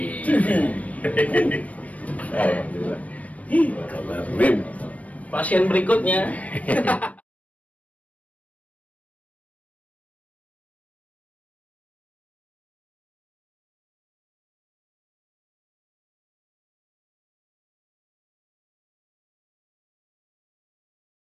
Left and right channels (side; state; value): right; late; 0.068 ms